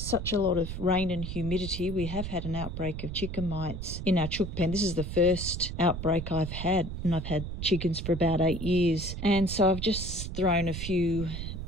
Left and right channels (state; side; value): noise; right; rumble, 6 dB below the sound